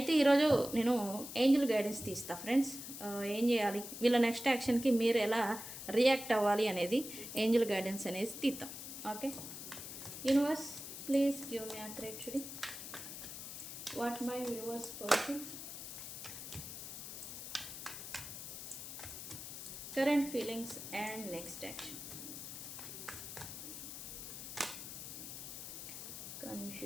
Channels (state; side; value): noise; left; hiss, 9 dB below the sound